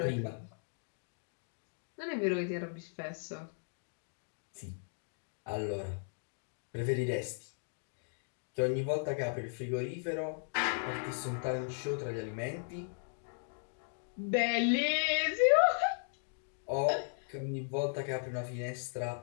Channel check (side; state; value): right; silent; digital silence